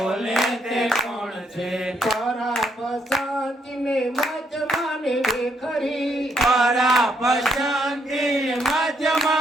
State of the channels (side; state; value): both; normal; correlation 0.74